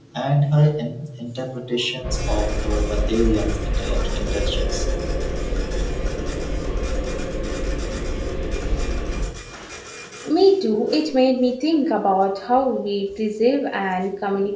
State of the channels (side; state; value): both; identical; correlation 1.00